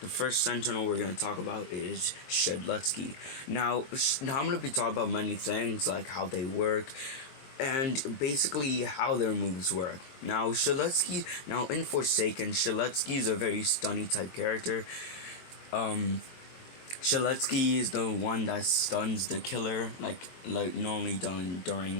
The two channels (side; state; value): right; late; 23 ms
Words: first sentinel we're gonna talk about is Shedletsky. Now I'm gonna be talking about many things like how they work and basically how their moves work. Now in Forsaken, Shedletsky is a very stunny type character. Shedletsky is the one that stuns the killer, like normally done